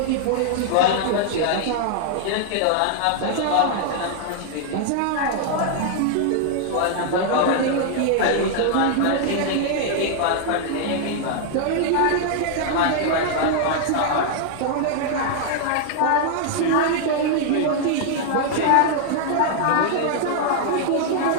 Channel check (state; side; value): different; both; correlation 0.00